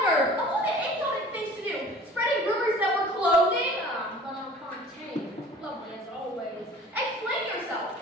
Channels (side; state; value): both; normal; correlation 0.46